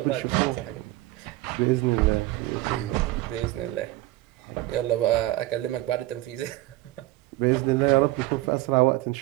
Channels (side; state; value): left; quieter; 17.6 dB